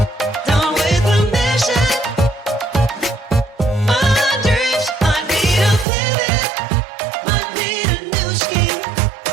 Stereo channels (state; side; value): drops out; left; at 5.9 s